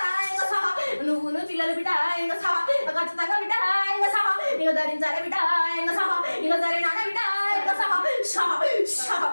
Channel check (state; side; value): inverted; both; correlation -1.00